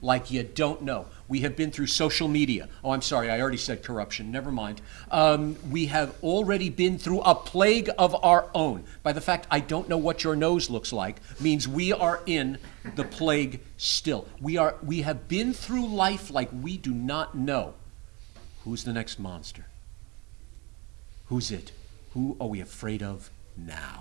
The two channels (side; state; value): left; quieter; 27.4 dB